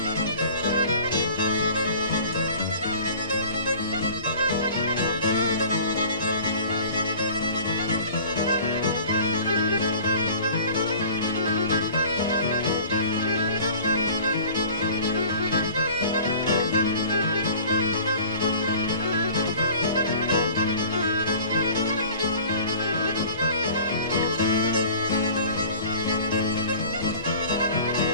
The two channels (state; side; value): inverted; both; correlation -0.45